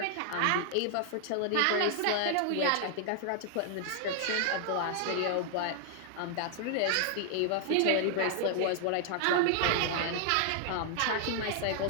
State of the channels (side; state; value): both; different; correlation 0.00